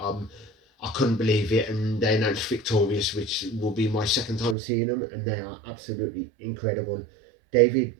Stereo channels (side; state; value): left; drops out; at 4.5 s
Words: I couldn't believe it, and they announced Victorious, which will be my second time seeing them, and they are absolutely incredible. David